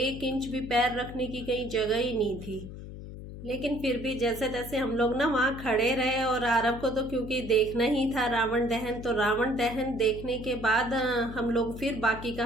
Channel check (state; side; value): noise; left; hum, 12 dB below the sound